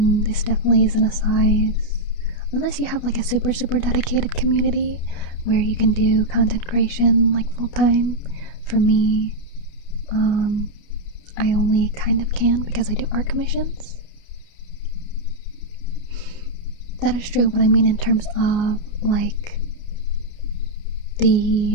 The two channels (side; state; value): right; late; 29 ms